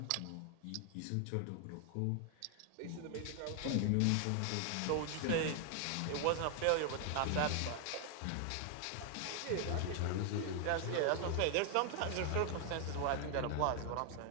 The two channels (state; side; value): different; both; correlation 0.00